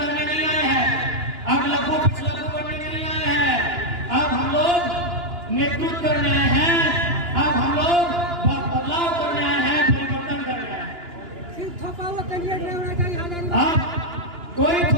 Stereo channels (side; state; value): left; late; 2.9 ms